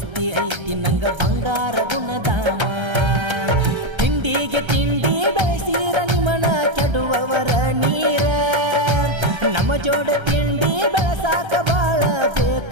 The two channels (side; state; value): left; late; 1.3 ms